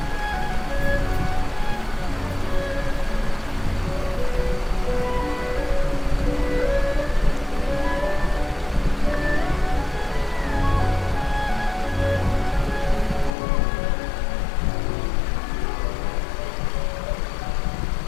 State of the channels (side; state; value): right; drops out; at 13.4 s